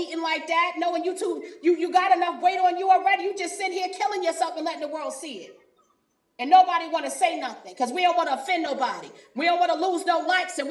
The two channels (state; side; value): identical; both; correlation 1.00